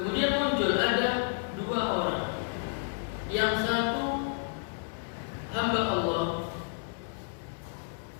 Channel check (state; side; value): silent; right; digital silence